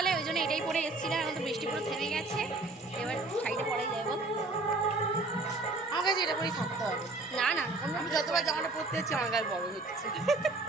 ওই জন্য এটাই পরে এসেছিলাম। এখন তো বৃষ্টি পুরো থেমে গেছে, এবার শাড়িটা পরেই যাবো। আমার কাছে এটা পরেই থাকতে হবে। না আমি যতবার জামাটা পরতে যাচ্ছি আমার গায়ে বড় হচ্ছে।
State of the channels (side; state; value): left; quieter; 3.2 dB